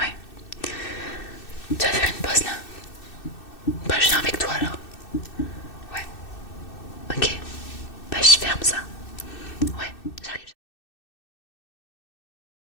Tu vas faire une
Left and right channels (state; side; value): late; right; 2.6 ms